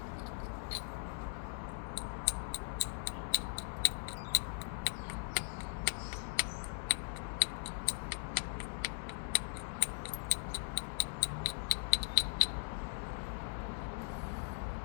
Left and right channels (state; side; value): silent; right; 51 dB below the other